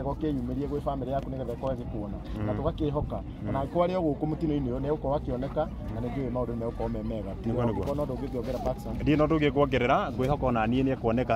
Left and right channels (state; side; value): identical; both; correlation 1.00